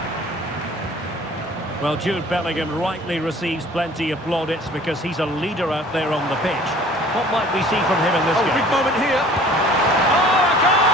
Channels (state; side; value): normal; both; correlation 0.50